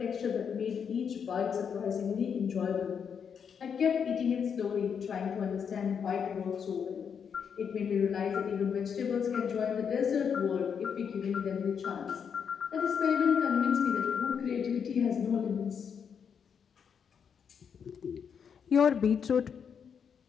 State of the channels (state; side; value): quieter; right; 7.1 dB